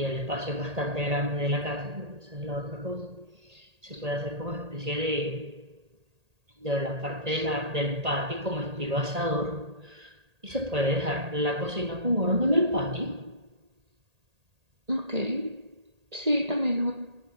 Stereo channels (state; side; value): late; left; 1.8 ms